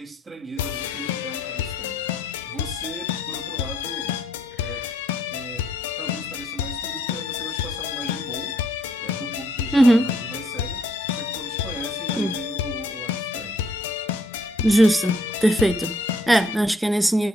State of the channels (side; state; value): both; normal; correlation 0.68